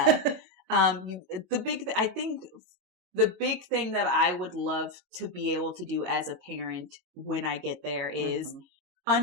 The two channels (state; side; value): late; left; 22 ms